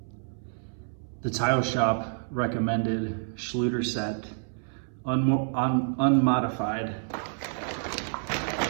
The tile shop recommended Schluter set, unmodified.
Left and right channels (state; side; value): silent; left; 59 dB below the other